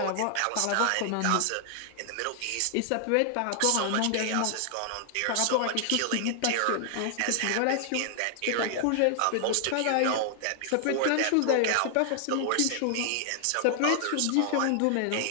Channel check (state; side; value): different; both; correlation 0.00